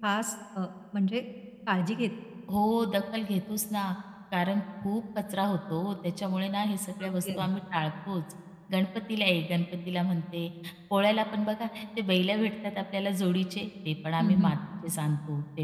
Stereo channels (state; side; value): identical; both; correlation 1.00